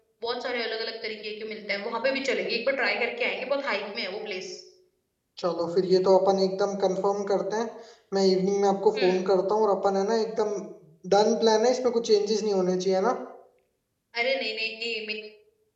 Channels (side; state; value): both; identical; correlation 1.00